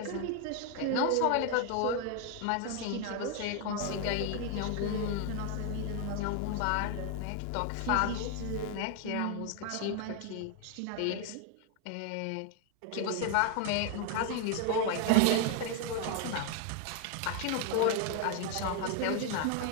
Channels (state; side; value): different; both; correlation 0.00